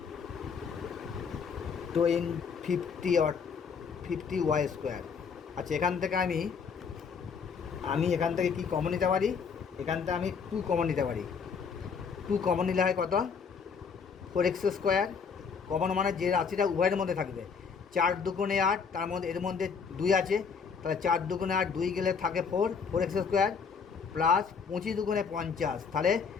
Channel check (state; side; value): quieter; right; 6.0 dB